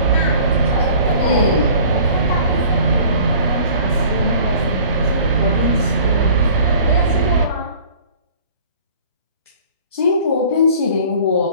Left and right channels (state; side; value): inverted; both; correlation -0.49